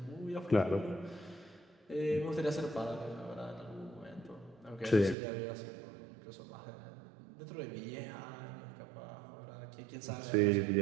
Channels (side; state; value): left; drops out; at 5.2 s